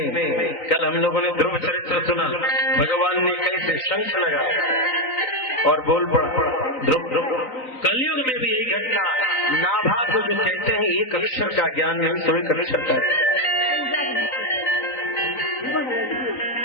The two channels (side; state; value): right; late; 3.9 ms